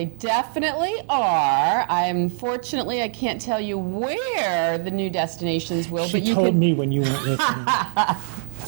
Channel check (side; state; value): left; silent; digital silence